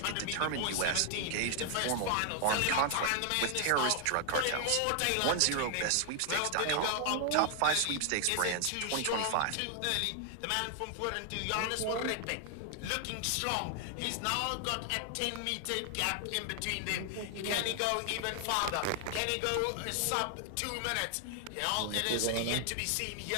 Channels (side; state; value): both; different; correlation 0.00